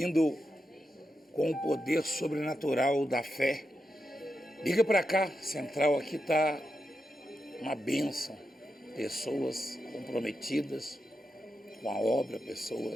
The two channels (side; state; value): both; normal; correlation 0.87